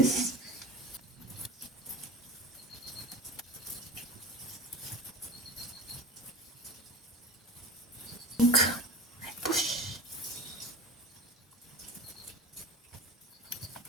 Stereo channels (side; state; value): both; normal; correlation 0.35